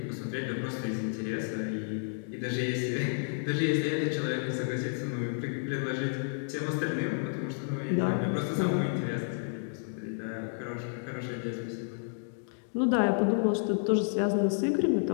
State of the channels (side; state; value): right; silent; digital silence